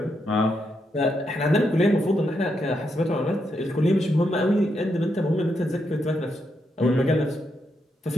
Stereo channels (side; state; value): both; normal; correlation 0.81